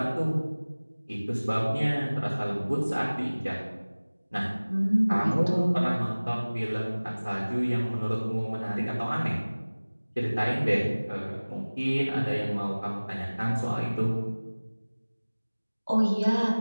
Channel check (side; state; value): both; inverted; correlation -1.00